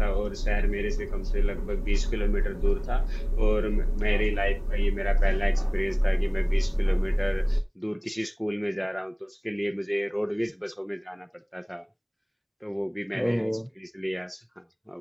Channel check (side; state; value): both; identical; correlation 1.00